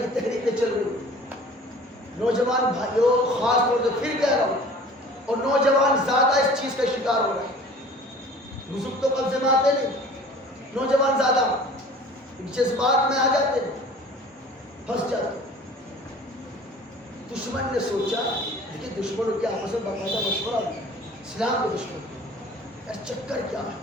تحریکیں چل رہی ہیں. نوجوان بھائیوں خاص طور سے پھر کہہ رہا ہوں، اور نوجوان زیادہ اس چیز کا شکار ہو رہے ہیں. بزرگ تو قبضے میں آتے نہیں، نوجوان زیادہ جذبات میں آ جاتے ہیں، پھنس جاتے. دشمن نے سوچا لیکن دشمنوں کے آپس میں باقاعدہ مشورہ ہوا اسلام کے دشمن یار چکر کیا ہے،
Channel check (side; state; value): both; normal; correlation 0.46